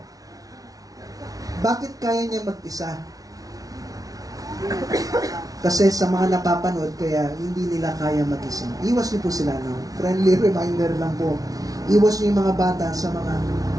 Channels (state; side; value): late; left; 0.18 ms